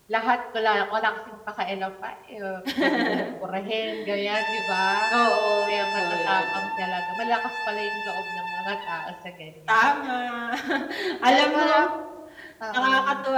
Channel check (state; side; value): identical; both; correlation 1.00